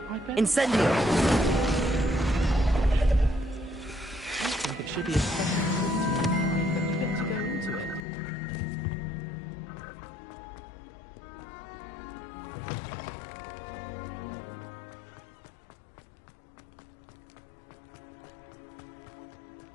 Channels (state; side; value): drops out; right; at 8.0 s